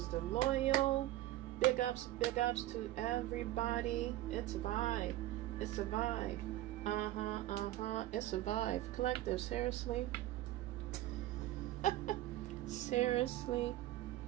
the loyal. Big ups to everybody. It's a vibe. It's a vibe. It's a vibe. Collective, seriously. Seriously,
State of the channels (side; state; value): left; quieter; 15.2 dB